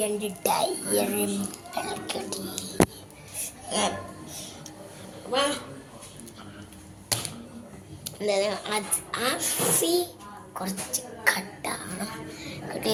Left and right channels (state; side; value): identical; both; correlation 1.00